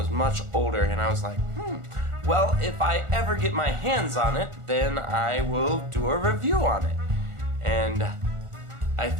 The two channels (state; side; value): late; left; 1.4 ms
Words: much older. And I was like, well, if I ever get my hands on it, then I will do a review on it. And I